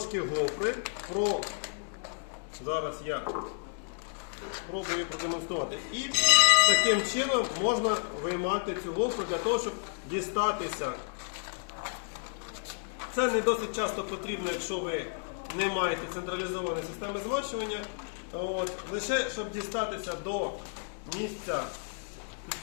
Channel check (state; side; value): silent; right; digital silence